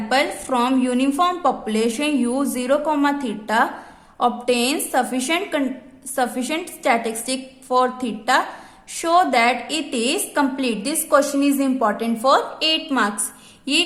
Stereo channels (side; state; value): both; identical; correlation 1.00